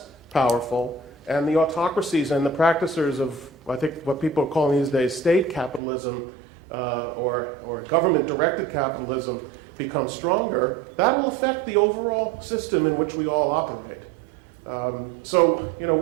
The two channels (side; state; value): left; drops out; at 5.8 s